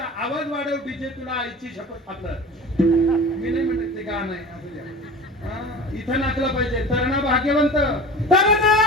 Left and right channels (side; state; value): both; normal; correlation 0.37